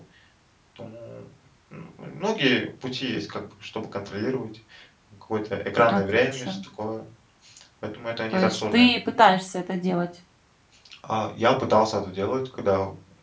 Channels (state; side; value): identical; both; correlation 1.00